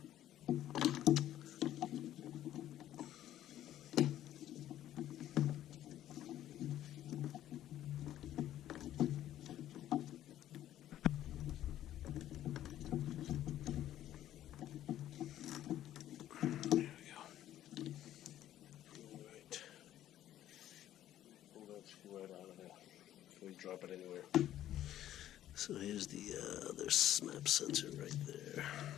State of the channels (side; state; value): right; quieter; 12.4 dB